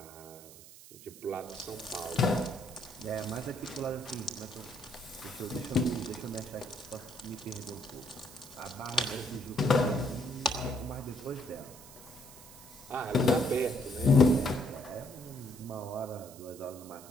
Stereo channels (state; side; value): noise; right; hiss, 18 dB below the sound